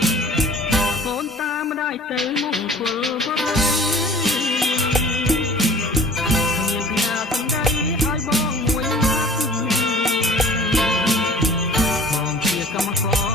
កូនតាមម្ដាយទៅមង្គលបរិយមានផ្ញើសំដីឲ្យបងមួយណាត់បងជាកម្មក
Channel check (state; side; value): normal; both; correlation 0.47